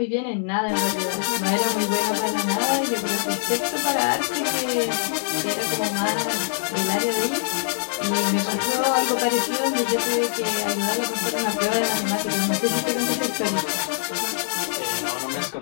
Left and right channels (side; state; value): right; silent; digital silence